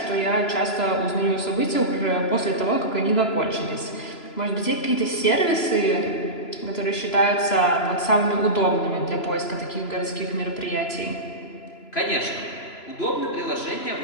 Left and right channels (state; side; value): late; right; 3.0 ms